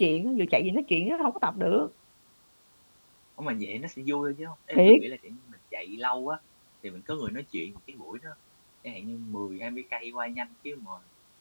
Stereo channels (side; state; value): both; inverted; correlation -1.00